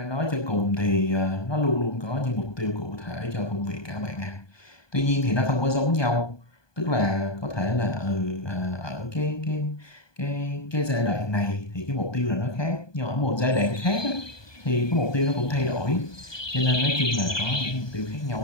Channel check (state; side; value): late; right; 1.2 ms